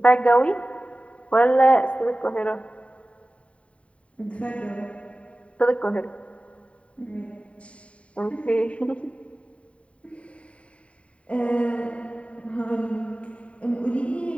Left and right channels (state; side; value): late; right; 0.063 ms